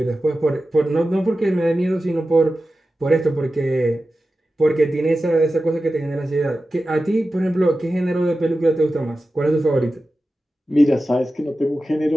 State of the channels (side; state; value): both; normal; correlation 0.93